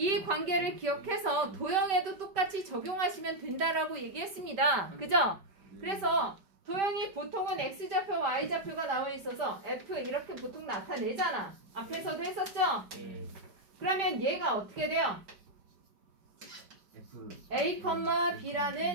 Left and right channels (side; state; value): left; late; 5.2 ms